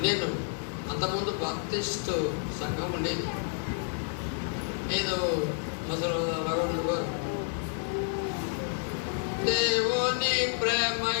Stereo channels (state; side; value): silent; right; 58 dB below the other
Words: నేను అంతకుముందు బాప్టిస్టు సంఘం ఉండేది. ఏదో మొదలు రఘుడు గారు దేవుని ప్రేమ